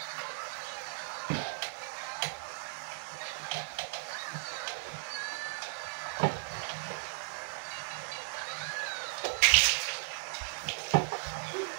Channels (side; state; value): left; silent; digital silence